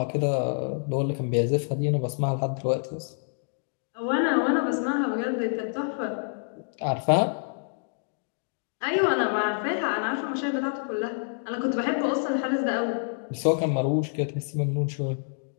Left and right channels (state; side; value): silent; right; digital silence